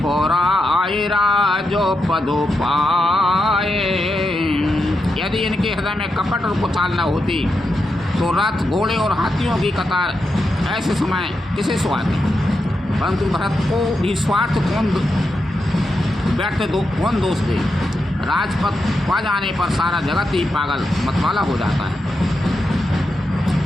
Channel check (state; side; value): normal; both; correlation 0.86